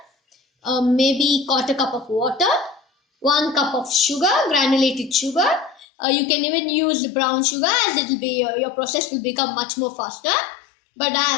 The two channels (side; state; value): right; drops out; at 5.9 s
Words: maybe 1/4 cup of water, 1 cup of sugar, granulated sugar. You can even use brown sugar, as it will be your process will become much more faster. But